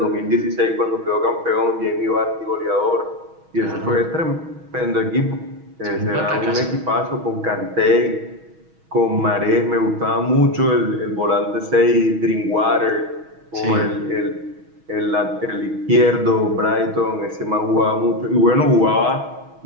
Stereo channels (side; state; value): left; late; 6.3 ms